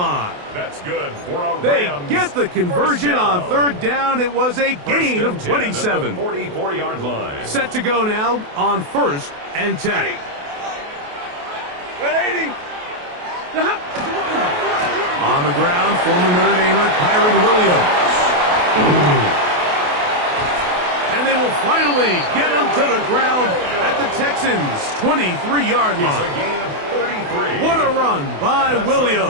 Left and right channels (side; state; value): left; late; 28 ms